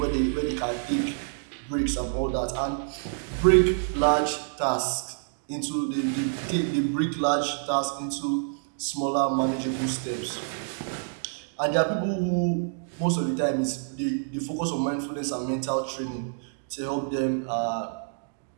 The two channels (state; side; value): silent; left; digital silence